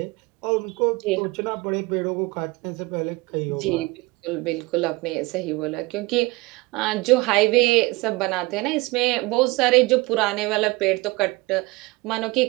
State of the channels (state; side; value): quieter; left; 22.7 dB